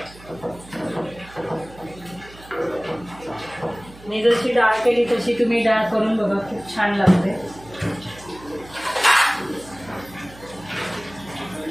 मी जशी डाळ केली तशी तुम्ही डाळ करून बघा खूप छान लागते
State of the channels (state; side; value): noise; right; hum, 20 dB below the sound